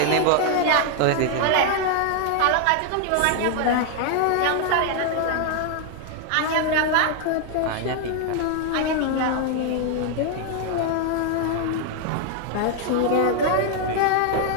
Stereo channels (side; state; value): both; different; correlation 0.00